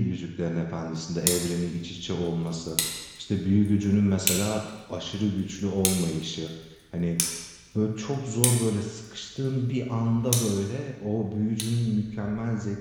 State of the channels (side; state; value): both; identical; correlation 1.00